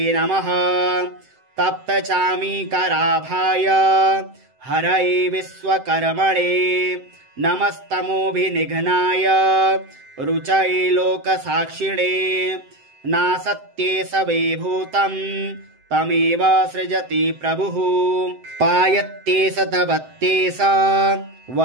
नमः तप्तचामीकराभाय हरये विश्वकर्मणे नमस्तमोभिनिघ्नाय रुचये लोकसाक्षिणे नासत्ये सवेभूतं तमेव सृजति प्रभुः पायत्ते सतवत्तेस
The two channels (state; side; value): late; left; 7.8 ms